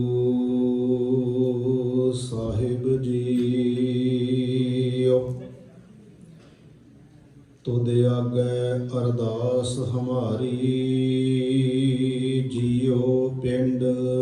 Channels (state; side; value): identical; both; correlation 1.00